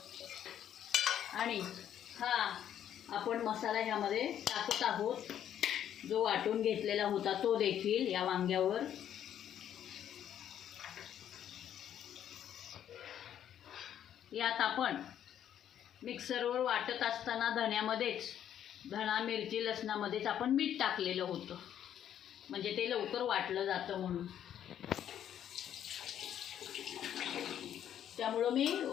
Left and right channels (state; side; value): quieter; right; 10.2 dB